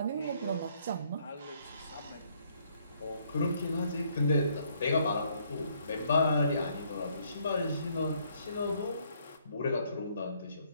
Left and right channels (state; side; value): inverted; both; correlation -0.68